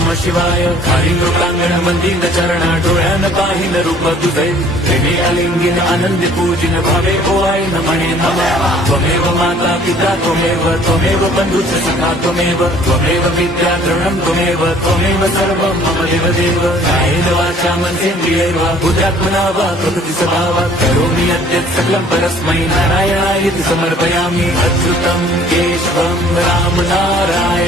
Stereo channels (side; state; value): both; normal; correlation 0.55